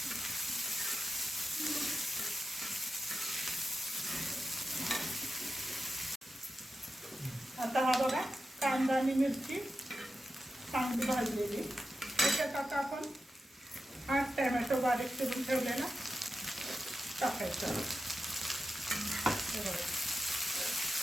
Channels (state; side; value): normal; both; correlation 0.90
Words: आता हा बघा कांदा आणि मिरची चांगली भाजलेली. त्याच्यात आता आपण 8 टोमॅटो बारीक चिरून ठेवलेला टाकायचा.